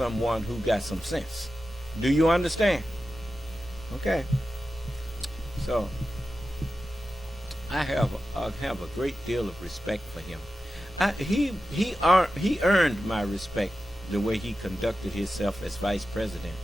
who got some sense. Do you understand? Okay. So I have a great deal of respect for him. He earned my respect the way he conducted himself as vice president,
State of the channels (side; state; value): both; normal; correlation 0.92